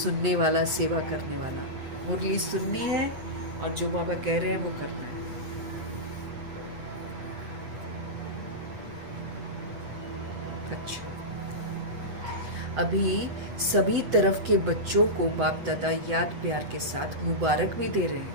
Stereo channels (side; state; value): left; late; 8.2 ms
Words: वाला, सेवा करने वाला। मुरली सुननी है और जो बाबा कह रहे हैं वो करना है। अच्छा, अभी सभी तरफ के बच्चों को बाप दादा याद प्यार के साथ मुबारक भी दे रहे